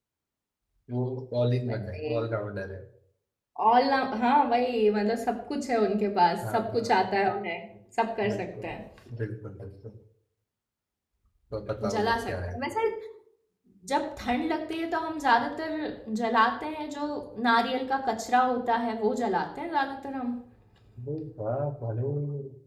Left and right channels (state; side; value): identical; both; correlation 1.00